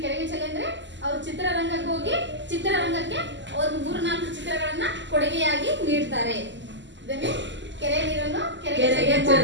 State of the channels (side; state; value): left; late; 0.53 ms